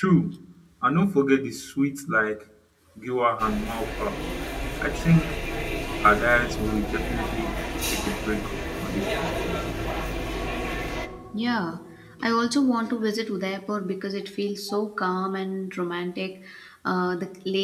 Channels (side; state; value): both; identical; correlation 1.00